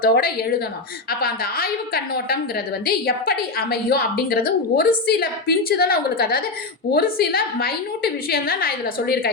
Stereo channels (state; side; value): quieter; right; 3.6 dB